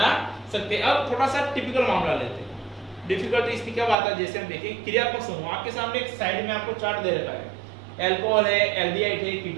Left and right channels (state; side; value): drops out; left; at 4.0 s